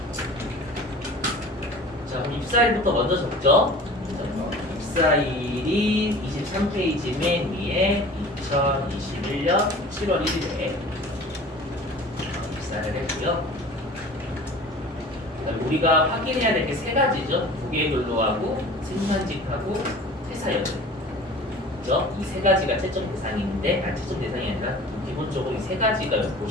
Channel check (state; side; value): normal; both; correlation 0.42